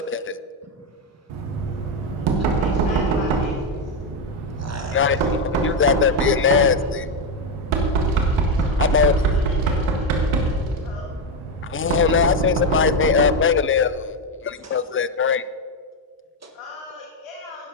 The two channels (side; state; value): both; normal; correlation 0.06